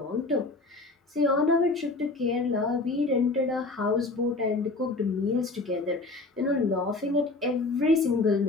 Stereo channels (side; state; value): right; quieter; 3.3 dB